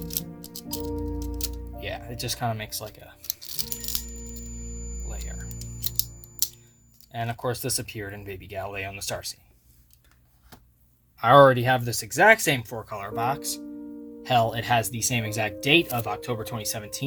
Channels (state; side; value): identical; both; correlation 1.00